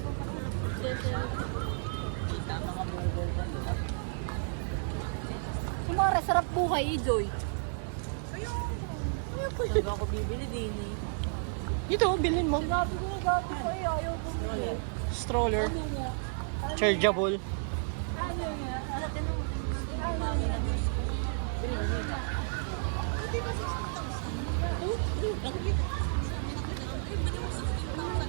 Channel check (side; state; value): left; silent; 56 dB below the other